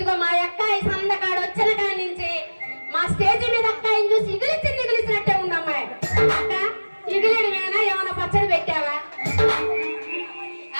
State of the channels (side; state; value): both; inverted; correlation -1.00